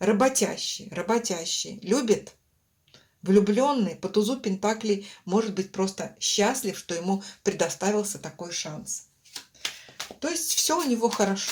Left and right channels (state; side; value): identical; both; correlation 1.00